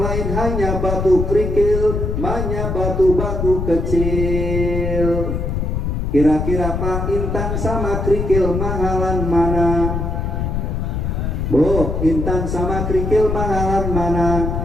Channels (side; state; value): left; noise; rumble, 2 dB below the sound